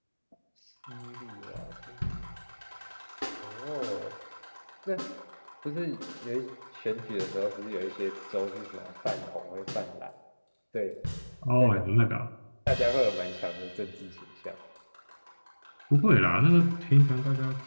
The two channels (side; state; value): both; inverted; correlation -1.00